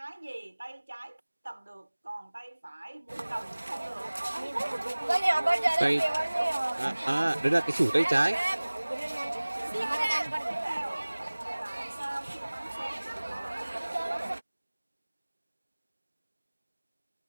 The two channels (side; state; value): both; inverted; correlation -1.00